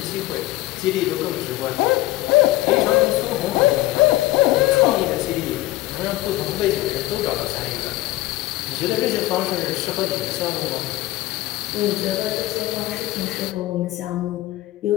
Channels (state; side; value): quieter; right; 17.3 dB